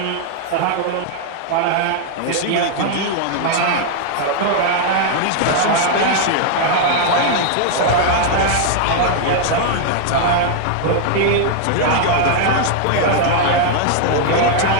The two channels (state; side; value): different; both; correlation 0.00